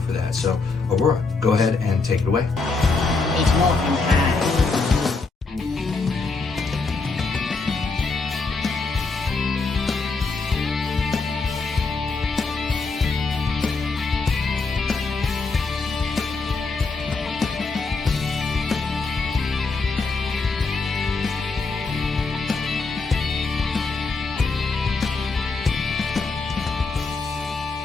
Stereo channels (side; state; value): right; quieter; 4.1 dB